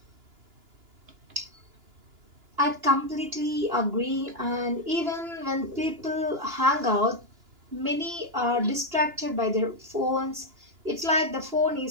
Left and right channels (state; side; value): late; left; 2.9 ms